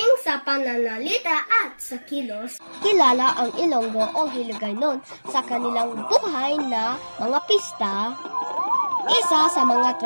sa pananalita at sa kilos. Kilala ang Ilonggo o Hiligaynon sa kanilang buhay na mga pista. Isa sa mga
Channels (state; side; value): inverted; both; correlation -1.00